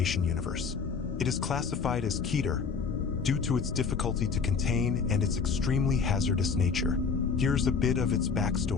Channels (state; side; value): quieter; right; 5.6 dB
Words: universe. It is classified as Keter due to its difficulty to contain and its extremely hazardous nature. Here's a bit of its